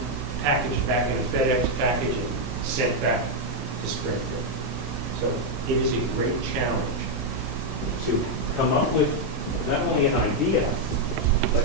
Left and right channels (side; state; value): both; normal; correlation 0.00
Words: packaged back in a FedEx package, and sent back to Springfield. So it is a great challenge to come up with not only an idea,